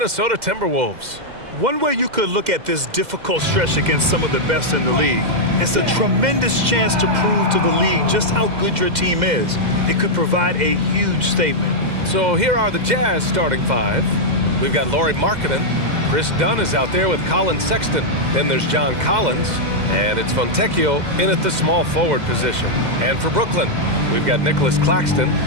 Timberwolves. One way you could look at this difficult stretch against some of the best in the league, it's a tremendous chance to prove to the league just how good your team is. It could provide a huge statement. So here are the Jazz starting five. We've got Lauri Markkanen. Chris Dunn is out there with Colin Sexton. Then there's John Collins. And it's Fontecchio in at the small forward position. And for Brooklyn, we've got Nicholas Claxton.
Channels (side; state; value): left; late; 2.0 ms